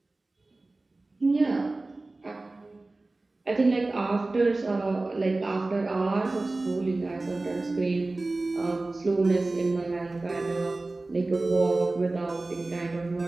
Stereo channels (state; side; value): quieter; left; 3.1 dB